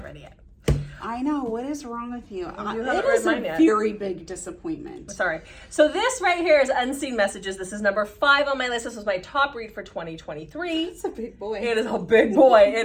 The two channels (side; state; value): both; identical; correlation 1.00